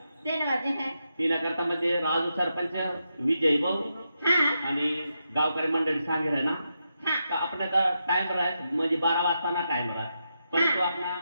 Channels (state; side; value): inverted; both; correlation -0.85